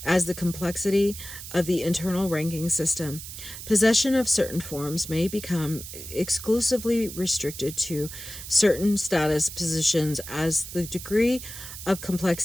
as the complexity of the internal ranking system. Possession of certain forms may become exclusively restricted to certain status positions. As the degree of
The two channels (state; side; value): noise; right; hiss, 11 dB below the sound